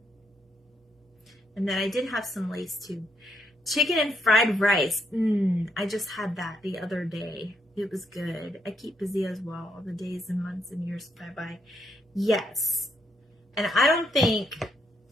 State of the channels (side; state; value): both; normal; correlation 0.76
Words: And then I did have some lace too. Chicken and fried rice. I just had that the other day. It was good. I keep busy as well. The days and months and years fly by. Yes. And I